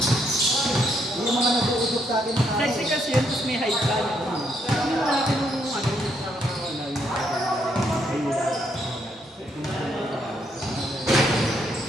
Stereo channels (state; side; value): normal; both; correlation 0.74